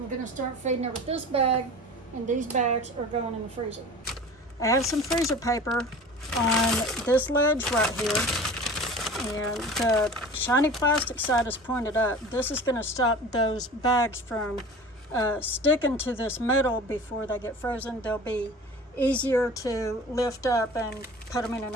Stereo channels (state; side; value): normal; both; correlation 0.39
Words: gonna start feeding her with this bag, and these bags are going in the freezer. I have some freezer paper on this ledge right here, and the shiny plastic side is pointed up. This is gonna stop those bags from sticking to this metal before they get frozen. They'll be easier to lift up and put them in